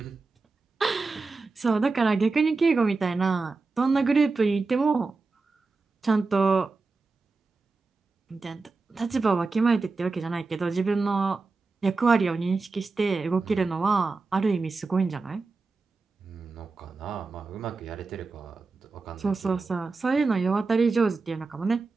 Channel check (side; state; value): left; quieter; 3.9 dB